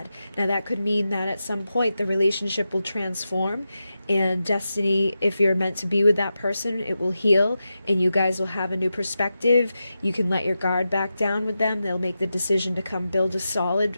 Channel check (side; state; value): both; inverted; correlation -0.90